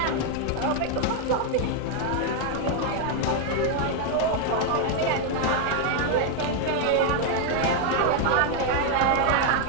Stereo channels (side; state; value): both; different; correlation 0.01